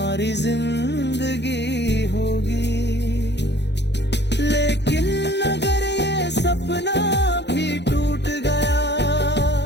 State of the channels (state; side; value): late; right; 0.50 ms